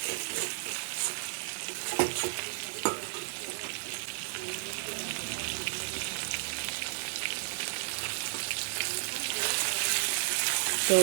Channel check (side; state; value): left; silent; digital silence